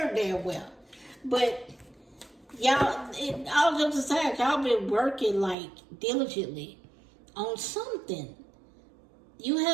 damn well. But y'all, all jokes aside, y'all been working like diligently on something. You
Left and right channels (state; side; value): drops out; left; at 5.6 s